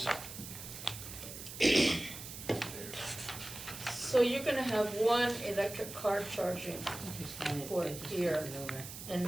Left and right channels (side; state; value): right; noise; hiss, 11 dB below the sound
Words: So you're gonna have one electric car charging port here,